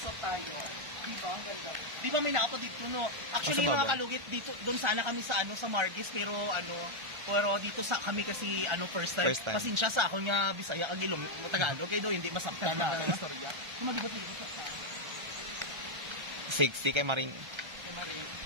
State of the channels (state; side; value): late; left; 1.4 ms